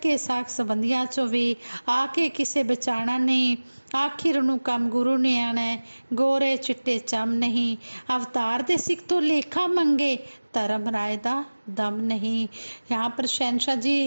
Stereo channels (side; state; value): both; inverted; correlation -1.00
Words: साख संबंधियां चो भी आके किसे बचाना नहीं, आखिर ਨੂੰ ਕੰਮ ਗੁਰੂ ਨੇ ਆਣਾ, ਗੋਰੇ ਚਿੱਟੇ ਚਮ ਨਹੀਂ, ਅਵਤਾਰ ਦੇ ਸਿੱਖ ਤੋਂ ਲੇਖਾ ਮੰਗੇ धर्म रायदा दम नहीं। यहाँ पर शहनशाह